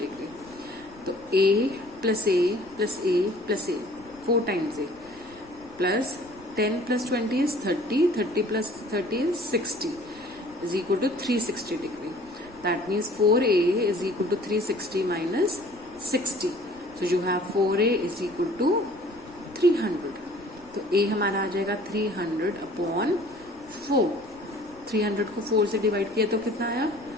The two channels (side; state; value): left; noise; rumble, 25 dB below the sound